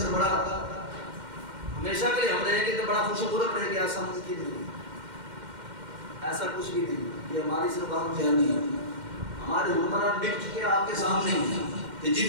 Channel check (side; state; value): left; late; 2.1 ms